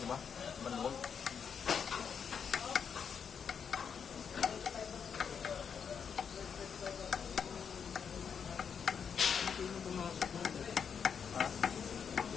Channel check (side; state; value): right; quieter; 6.9 dB